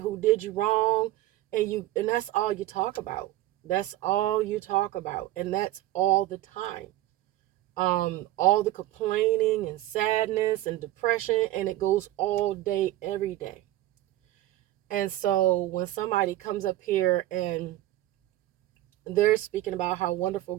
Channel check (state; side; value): quieter; left; 15.2 dB